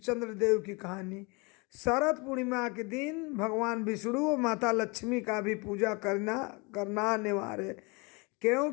की कहानी। शरद पूर्णिमा के दिन भगवान विष्णु और माता लक्ष्मी का भी पूजा करना अनिवार्य है,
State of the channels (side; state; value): right; quieter; 28.6 dB